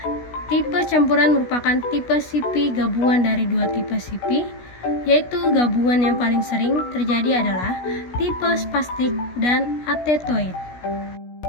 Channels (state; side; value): late; right; 16 ms